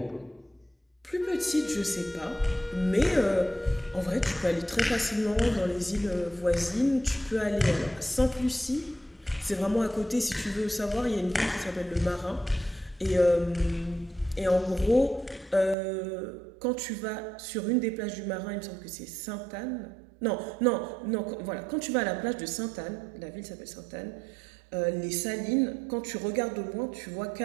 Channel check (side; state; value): left; drops out; at 15.8 s